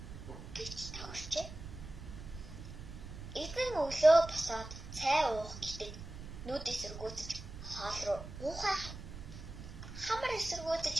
гэж тохирчээ. Эзэн өглөө босоод цай уух гэдэг нүд эсэргүүцэж хоол руу уухай. Хамар эсэргүүцэж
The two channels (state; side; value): noise; right; rumble, 11 dB below the sound